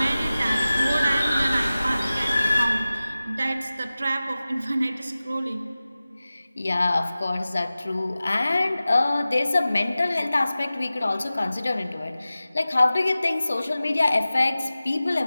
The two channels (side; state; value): both; inverted; correlation -0.96